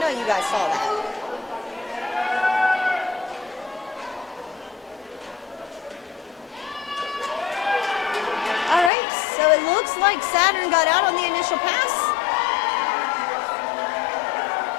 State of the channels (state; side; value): drops out; right; at 8.9 s